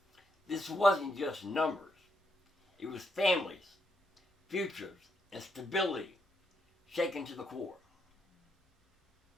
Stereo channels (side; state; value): both; normal; correlation 0.78